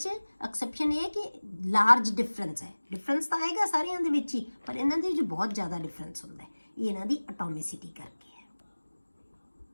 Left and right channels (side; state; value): both; inverted; correlation -1.00